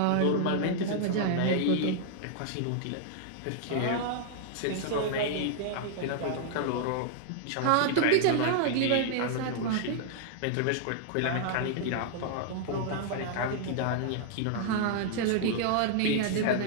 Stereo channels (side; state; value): both; different; correlation -0.01